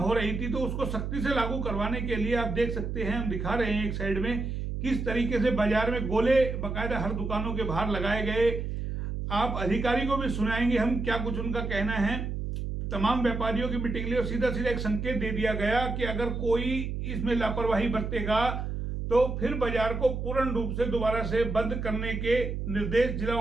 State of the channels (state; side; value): noise; right; hum, 4 dB below the sound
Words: रही थी, तो उसको सख्ती से लागू करवाने के लिए आप देख सकते हैं, हम दिखा रहे हैं एक साइड में किस तरीके से बाजार में गोले बाकायदा हर दुकानों के बाहर लगाए गए। आप अधिकारी को भी सुनाएंगे हम क्या कुछ उनका कहना है। तमाम व्यापारियों की मीटिंग ली और सीधा सीधा एक संकेत दे दिया गया कि अगर कोई इसमें लापरवाही बरतेगा तो फिर बाजार को पूर्ण रूप से दोबारा से बंद करने के निर्देश जिला